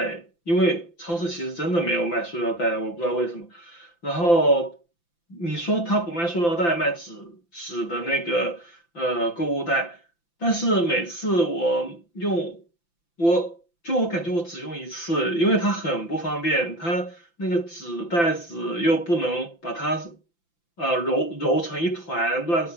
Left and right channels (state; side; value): late; right; 5.9 ms